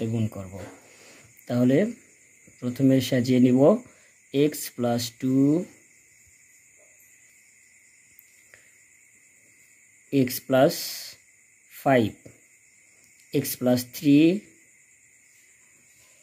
গুণ করব। তাহলে প্রথমে সাজিয়ে নিব x + 2 x + 5 x + 3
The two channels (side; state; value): both; identical; correlation 1.00